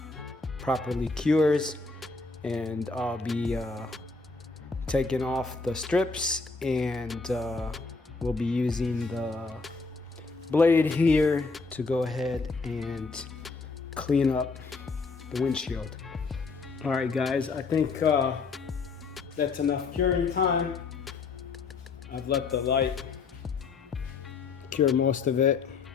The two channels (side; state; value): right; quieter; 4.2 dB